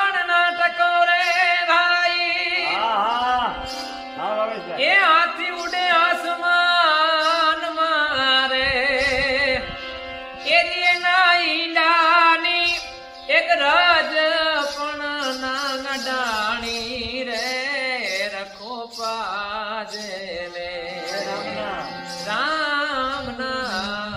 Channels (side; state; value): both; identical; correlation 1.00